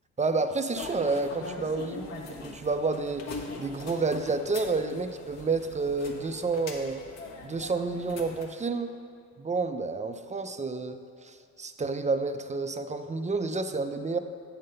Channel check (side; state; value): left; quieter; 3.1 dB